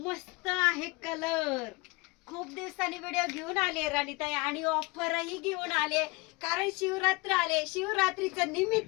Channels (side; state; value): right; quieter; 24.6 dB